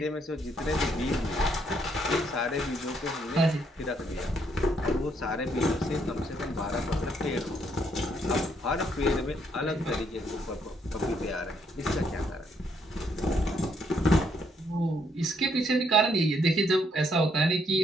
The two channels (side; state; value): both; normal; correlation 0.71